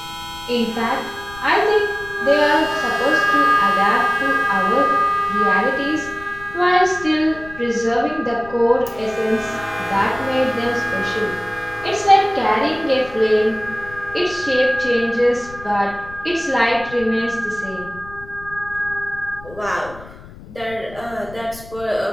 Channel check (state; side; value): noise; left; rumble, 18 dB below the sound